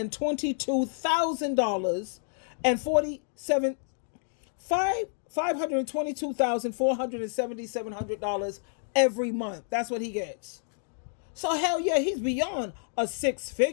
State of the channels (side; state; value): right; silent; digital silence